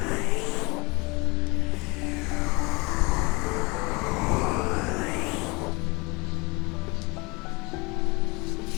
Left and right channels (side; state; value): right; quieter; 26.9 dB